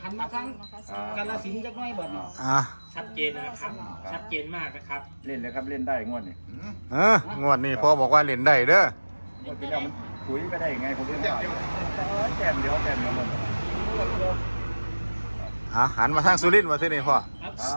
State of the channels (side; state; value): both; inverted; correlation -1.00